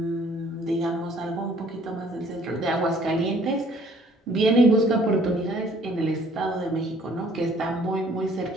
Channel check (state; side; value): normal; both; correlation 0.59